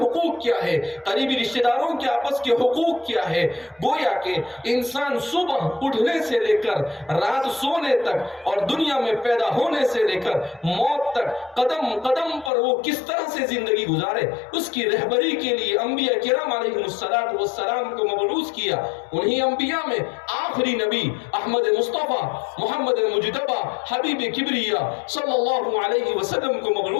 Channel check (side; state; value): right; drops out; at 12.5 s